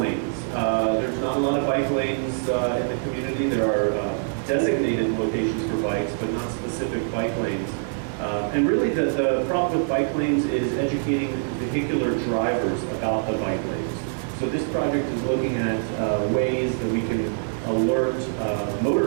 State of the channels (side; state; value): left; silent; digital silence